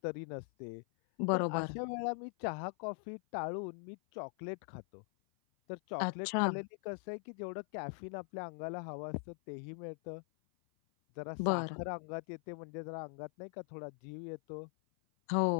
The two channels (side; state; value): right; silent; 51 dB below the other